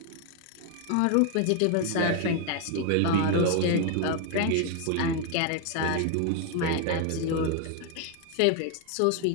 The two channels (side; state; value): both; different; correlation 0.01